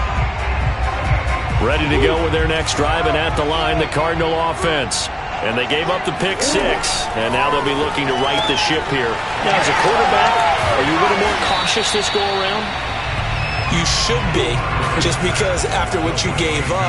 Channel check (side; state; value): both; identical; correlation 1.00